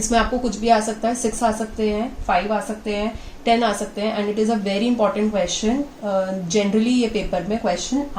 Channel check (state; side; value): identical; both; correlation 1.00